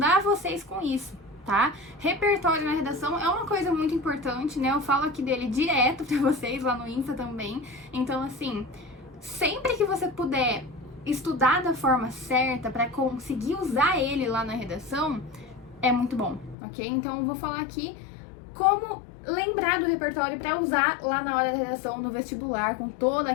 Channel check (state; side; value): drops out; right; at 16.6 s